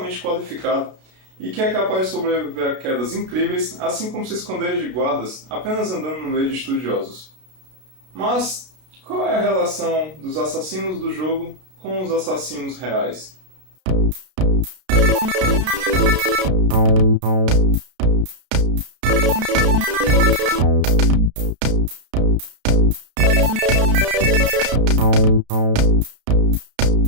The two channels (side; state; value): left; late; 32 ms